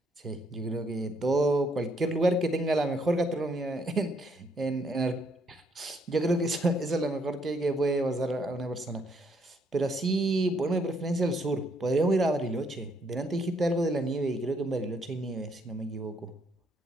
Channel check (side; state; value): both; normal; correlation 0.71